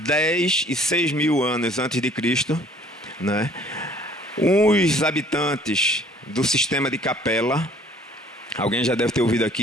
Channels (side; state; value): both; normal; correlation 0.56